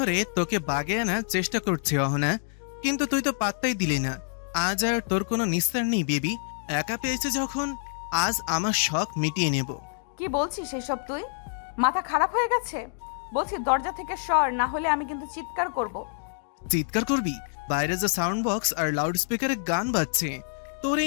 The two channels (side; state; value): right; silent; digital silence